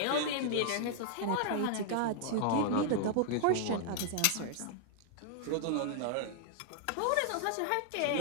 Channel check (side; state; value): both; different; correlation -0.01